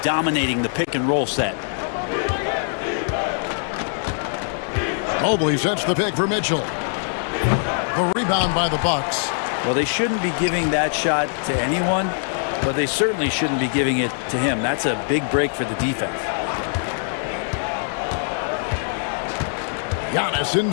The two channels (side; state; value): right; silent; digital silence